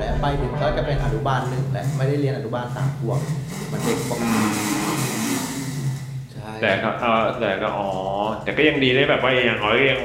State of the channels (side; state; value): both; identical; correlation 1.00